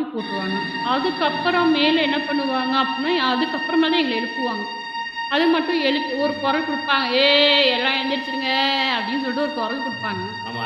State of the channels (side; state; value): both; identical; correlation 1.00